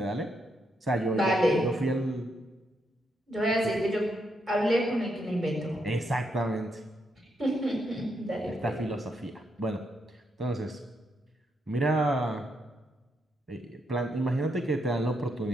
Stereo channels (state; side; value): normal; both; correlation 0.79